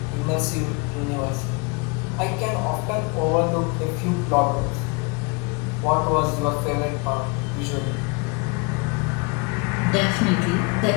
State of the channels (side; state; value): right; quieter; 28.5 dB